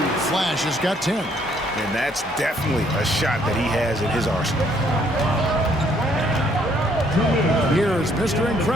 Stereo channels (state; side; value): normal; both; correlation 0.67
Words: Flash has got 10. And that's definitely a shot that he has in his arsenal. Here is Mr.